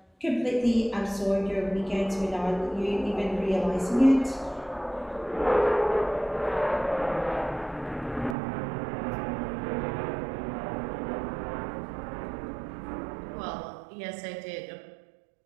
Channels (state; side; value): drops out; left; at 8.3 s